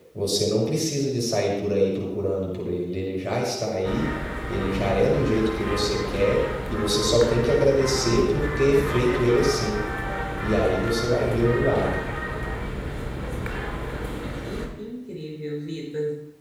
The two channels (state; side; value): identical; both; correlation 1.00